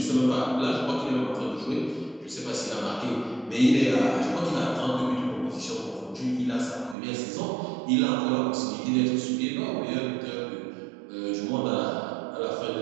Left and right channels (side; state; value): left; drops out; at 7.0 s